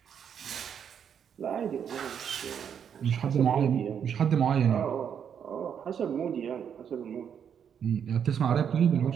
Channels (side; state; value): left; quieter; 8.0 dB